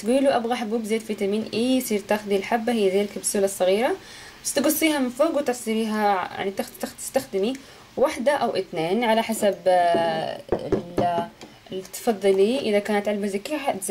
له ابغى حبوب زيت فيتامين اي، يصير تاخذي الحبة هي زي الكبسولة الصغيرة، بس تقصيها من فوق وتصيريها يعني تستخدمي واحدة او اثنين على حسب اللي تفضلي. اذا كانت علبة زي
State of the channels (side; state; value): both; identical; correlation 1.00